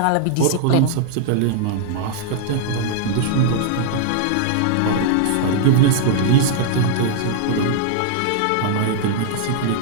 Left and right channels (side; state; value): both; different; correlation -0.01